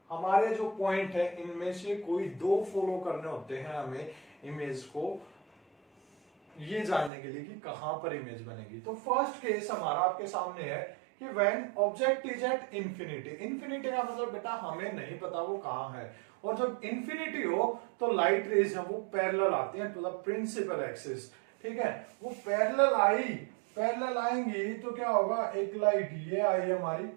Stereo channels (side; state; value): left; drops out; at 7.1 s